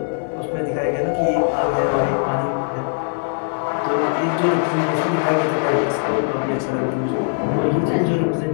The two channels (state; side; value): silent; right; 62 dB below the other